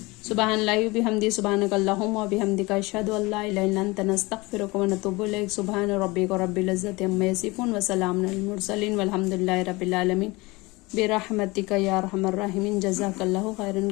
سبحان اللہ و بحمدہ، سبحانک اللہم و بحمدک، اشہد ان لا الہ الا انت، نستغفرک و نتوب الیک۔ سبحان ربک رب العزۃ عما یصفون وسلام علی المرسلین والحمد للہ رب العالمین، برحمتک یا ارحم الراحمین۔ جزاک اللہ خیرا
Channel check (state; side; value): quieter; right; 23.5 dB